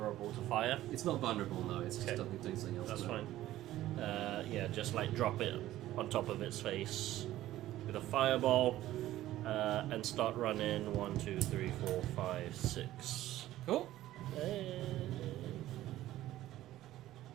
to fire. It's not vulnerable, no. It's just Okay. doing something else. That's to it. fine. Yeah, just like drop it on top of its face with a fireball and start running 1, 2, 3, 4, 5, 6. Cool.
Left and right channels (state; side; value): quieter; left; 14.6 dB